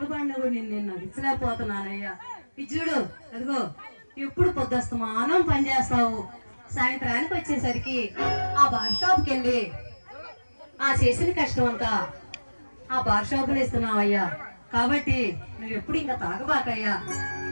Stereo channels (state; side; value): inverted; both; correlation -1.00